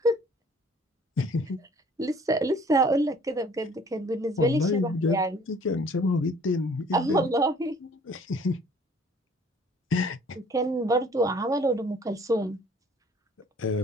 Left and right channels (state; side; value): normal; both; correlation 0.55